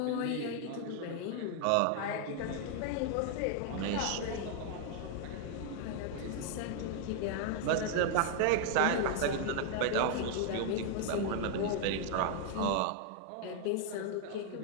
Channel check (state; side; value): different; both; correlation 0.00